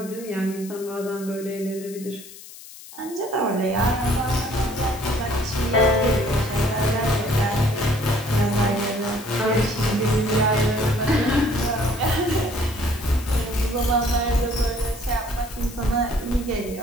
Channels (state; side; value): noise; left; hiss, 17 dB below the sound